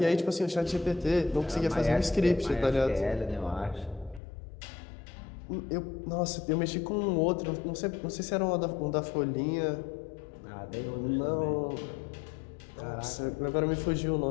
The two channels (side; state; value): right; drops out; at 4.2 s